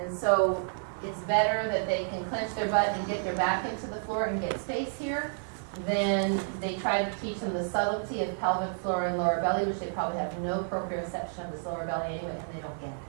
so it's better that they can clench their butt and get their back into the floor and get space here. Then they try to teach them the subtlety of pelvic floor and lower belly, which they probably have no proprioception of this lower belly anyway, and they don't get it.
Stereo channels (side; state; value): left; silent; 58 dB below the other